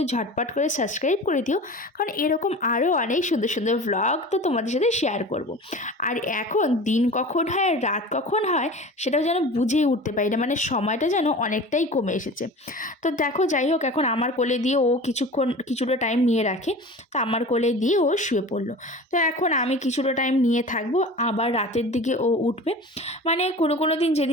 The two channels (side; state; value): both; normal; correlation 0.36